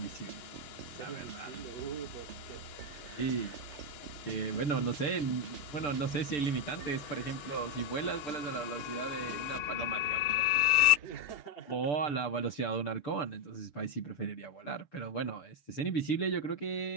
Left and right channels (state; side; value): late; right; 6.8 ms